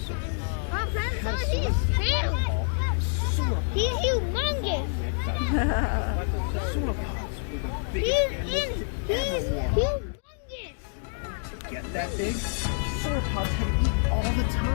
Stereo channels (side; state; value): right; silent; digital silence